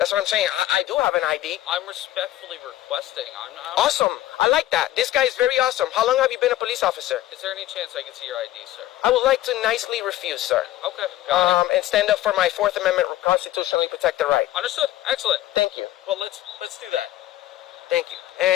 what I'm saying. I do have an ID. I'm respectfully requesting. Awesome. I like that. This guy is very awesome. How long have you been a police officer? Is there any chance I can see your ID, sir? I would like to nicely refuse, sir. Okay. Got it. And stand up for my Fourth Amendment constitutionally protected right. Understood. Excellent. Thank you. Well, let's do that. Thank you.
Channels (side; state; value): right; quieter; 14.7 dB